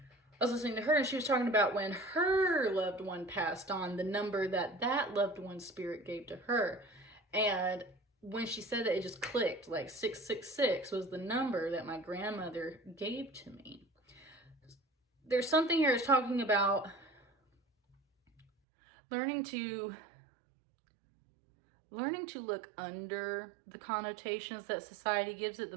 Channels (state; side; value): drops out; left; at 18.4 s